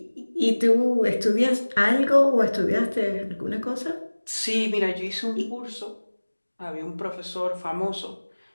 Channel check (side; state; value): both; inverted; correlation -1.00